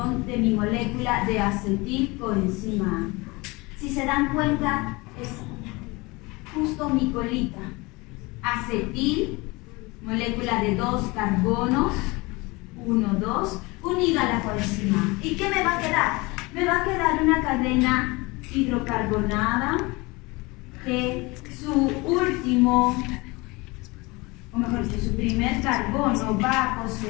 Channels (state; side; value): quieter; right; 24.4 dB